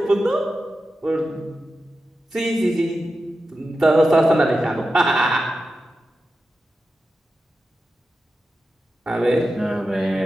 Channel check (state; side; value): normal; both; correlation 0.91